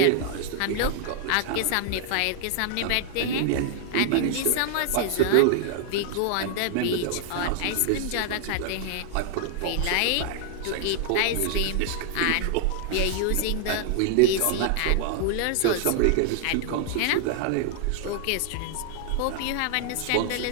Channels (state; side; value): different; both; correlation 0.00